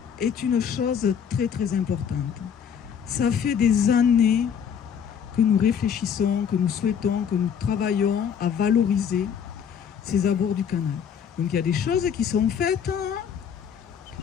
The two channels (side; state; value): right; quieter; 7.7 dB